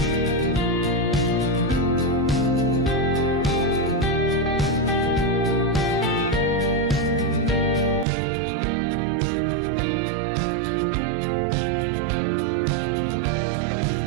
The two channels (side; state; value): left; drops out; at 8.1 s